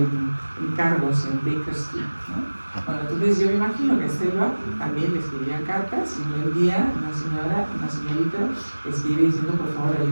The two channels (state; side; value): inverted; both; correlation -1.00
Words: encargos en Baker Street, ¿no? Bueno, entonces yo me imagino que Selva también le escribía cartas y un día una señorita escribe diciendo por favor